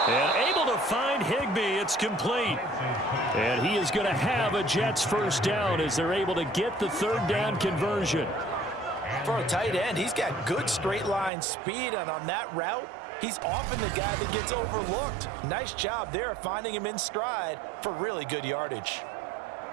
And able to find Higbee. It's complete. And he is going to have a Jets 1st down as they're able to get the 3rd down conversion. For a tight end, he's got good straight line speed, and on that route, he's often the guy that gets overlooked. Nice job there finding him in stride for really good yardage.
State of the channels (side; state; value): left; drops out; at 11.3 s